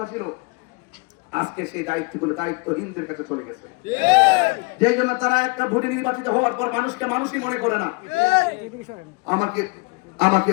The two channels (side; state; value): right; quieter; 28.6 dB